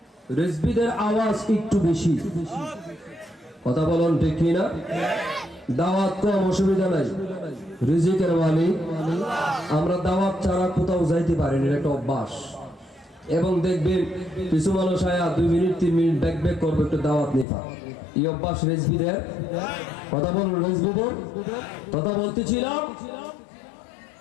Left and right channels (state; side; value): drops out; right; at 17.4 s